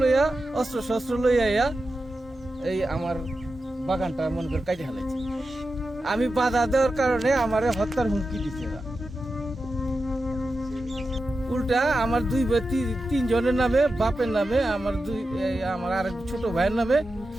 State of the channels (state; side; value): normal; both; correlation 0.91